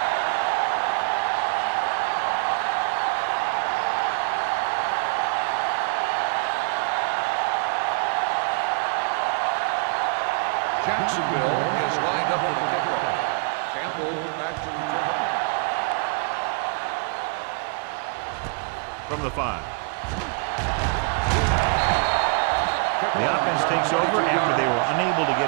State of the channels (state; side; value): quieter; left; 35.0 dB